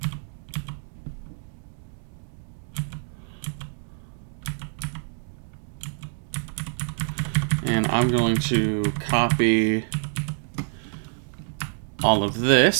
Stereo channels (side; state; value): left; silent; 61 dB below the other